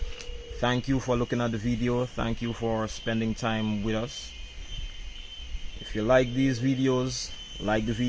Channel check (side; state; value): both; identical; correlation 1.00